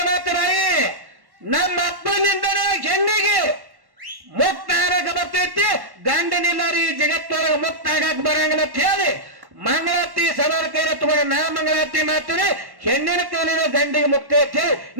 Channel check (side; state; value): left; late; 1.1 ms